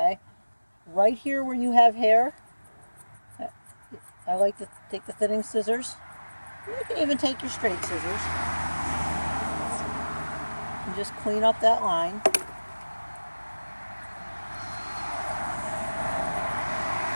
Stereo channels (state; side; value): inverted; both; correlation -1.00